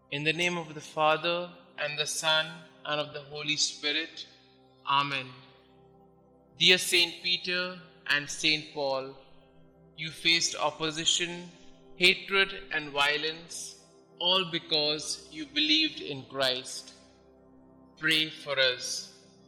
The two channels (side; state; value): both; identical; correlation 1.00